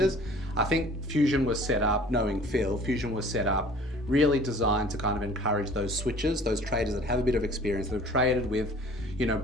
I think Fusion was set up, knowing Phil, Fusion was set up really designed to kind of encourage those switchers, those traders that have a bit of experience, that have traded with,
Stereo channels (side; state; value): both; normal; correlation 0.49